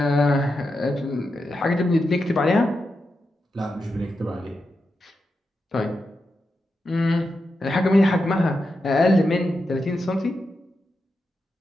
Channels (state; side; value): normal; both; correlation 0.88